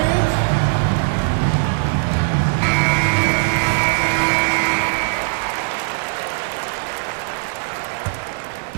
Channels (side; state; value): left; silent; 66 dB below the other